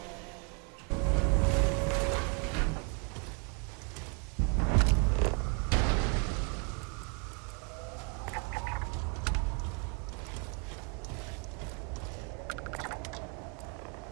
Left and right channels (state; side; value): quieter; left; 36.8 dB